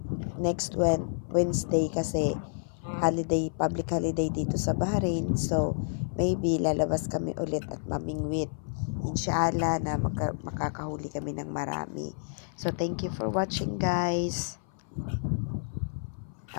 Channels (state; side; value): silent; right; 56 dB below the other